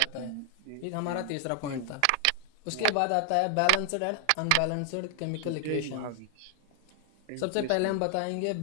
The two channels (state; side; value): different; both; correlation 0.00